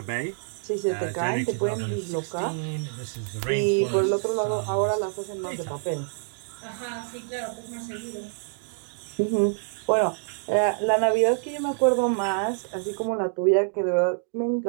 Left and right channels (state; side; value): silent; left; digital silence